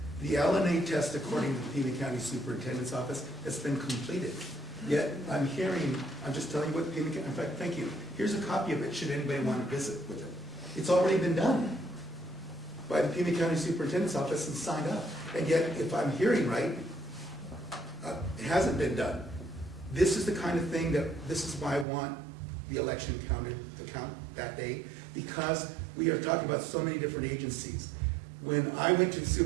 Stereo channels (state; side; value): drops out; left; at 21.9 s